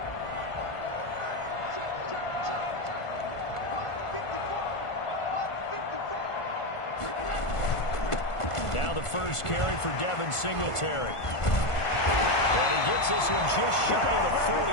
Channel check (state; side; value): late; right; 1.5 ms